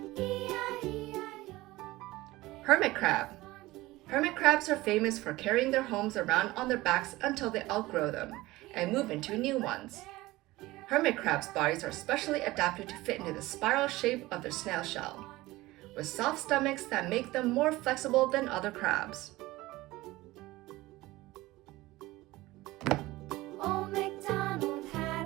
E-I-E-I-O. Hermit crab. Hermit crabs are famous for carrying their homes around on their backs until they outgrow them and move into new ones. Hermit crabs' bodies are specially adapted to fit into the spiral shape of their snail shell, with soft stomachs that make them more flexible than other crabs. Old MacDonald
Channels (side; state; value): left; quieter; 18.9 dB